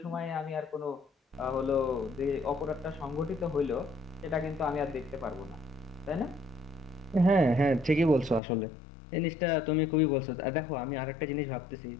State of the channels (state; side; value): drops out; right; at 8.4 s